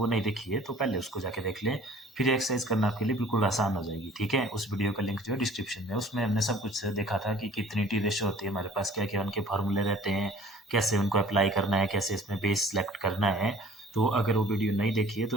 नहीं देखी है तो पहले उसको जाके देख लें, फिर एक्सरसाइज करना आपके लिए बिल्कुल आसान हो जाएगी। ठीक है, उस वीडियो का लिंक जो है डिस्क्रिप्शन में, उसमें हमने सब कुछ देखा था कि कितनी टी रेशो होती है हमारे पास, क्या क्या उनके फार्मूले रहते हैं, कैसे उनको अप्लाई करना है, कैसे इसमें बेस सेलेक्ट करना है। तो अगर वो वीडियो नहीं देखी है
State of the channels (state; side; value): normal; both; correlation 0.50